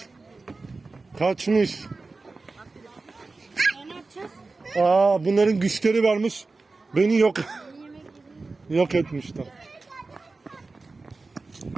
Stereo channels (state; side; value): quieter; left; 3.7 dB